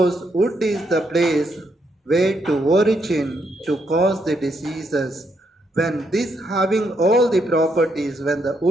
wood is the place where to origin to cause the diseases. When this having all the properties, when the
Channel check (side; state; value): both; normal; correlation 0.77